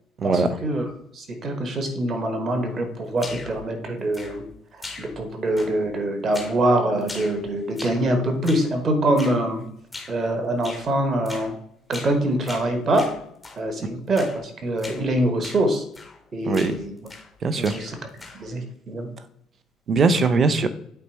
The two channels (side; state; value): both; normal; correlation 0.71